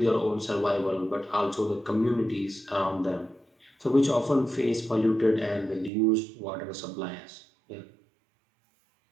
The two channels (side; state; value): left; drops out; at 5.9 s